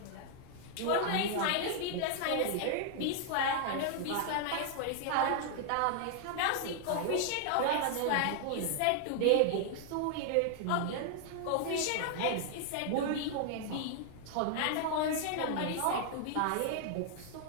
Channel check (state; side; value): different; both; correlation 0.00